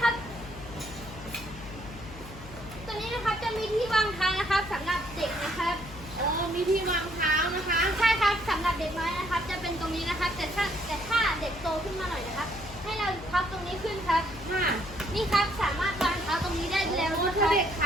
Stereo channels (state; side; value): noise; left; hum, 15 dB below the sound